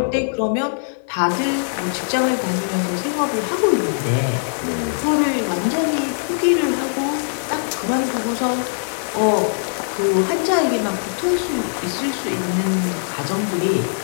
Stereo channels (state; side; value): silent; right; digital silence